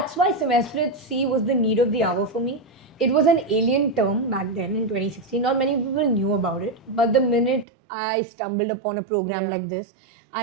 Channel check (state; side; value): drops out; left; at 7.7 s